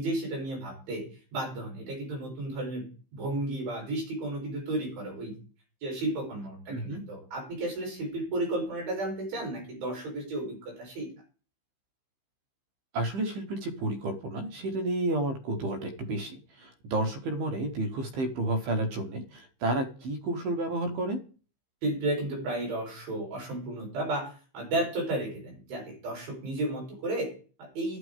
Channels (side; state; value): left; late; 15 ms